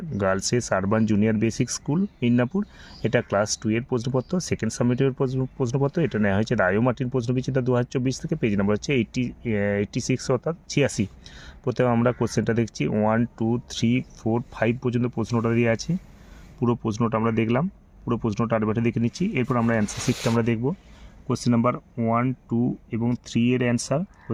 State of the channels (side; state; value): both; identical; correlation 1.00